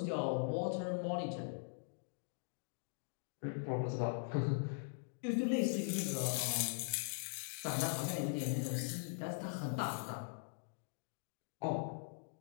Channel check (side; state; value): right; silent; digital silence